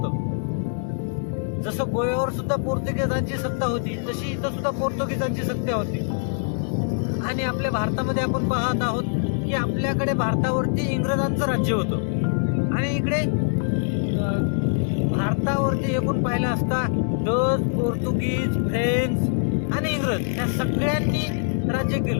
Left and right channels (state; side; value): silent; right; digital silence